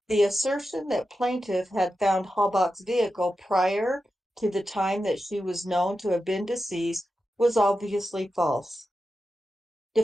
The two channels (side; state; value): both; normal; correlation 0.90